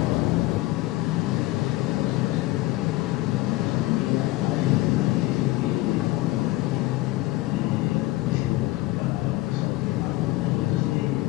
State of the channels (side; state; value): right; quieter; 18.8 dB